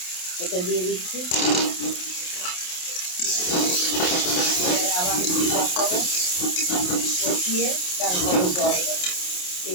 এটা দিয়ে দিচ্ছি। আবার একটু কষাবো, কষিয়ে তারপরে জল দেবো।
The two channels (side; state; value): right; late; 28 ms